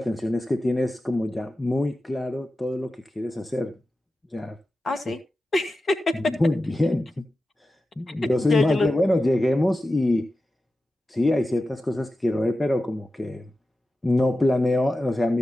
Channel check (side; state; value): both; normal; correlation 0.93